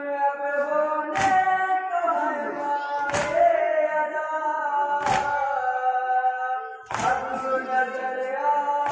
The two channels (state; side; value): identical; both; correlation 1.00